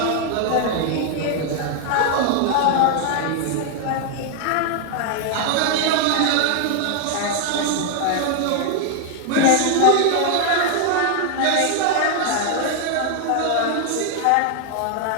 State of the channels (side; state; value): both; different; correlation 0.00